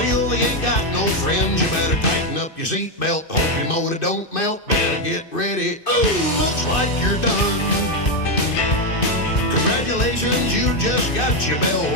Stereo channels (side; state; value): right; late; 2.6 ms